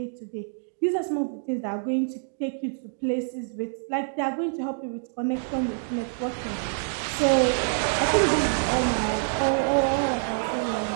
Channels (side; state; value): left; silent; 61 dB below the other